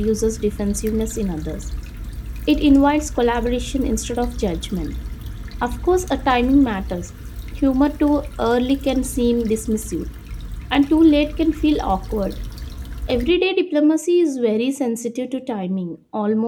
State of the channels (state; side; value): identical; both; correlation 1.00